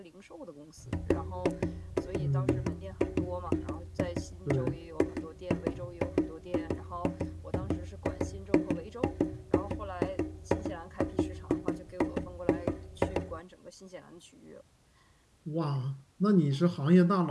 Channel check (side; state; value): both; identical; correlation 1.00